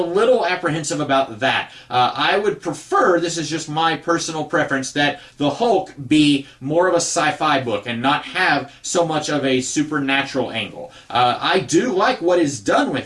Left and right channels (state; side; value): identical; both; correlation 1.00